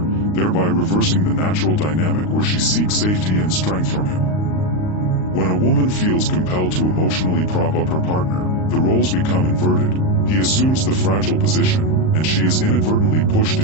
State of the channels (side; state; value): right; late; 39 ms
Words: thereby reversing the natural dynamic where she seeks safety and strength from him. When a woman feels compelled to emotionally prop up her partner, the roles become inverted. He assumes the fragile position, and she is inadvertently pushed